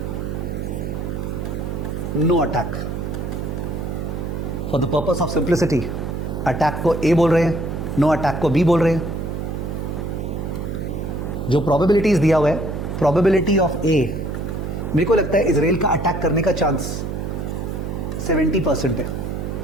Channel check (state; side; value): noise; right; hum, 4 dB below the sound